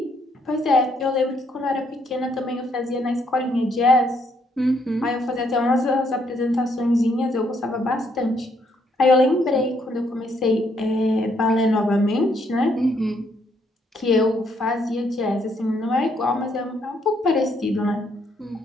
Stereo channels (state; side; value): normal; both; correlation 0.71